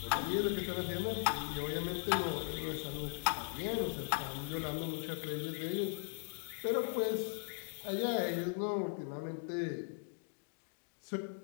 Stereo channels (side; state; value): right; silent; digital silence